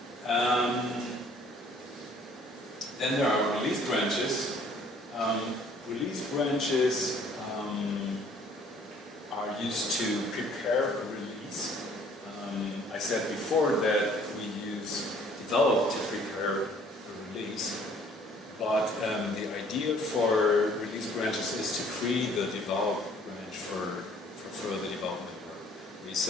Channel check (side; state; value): both; normal; correlation 0.57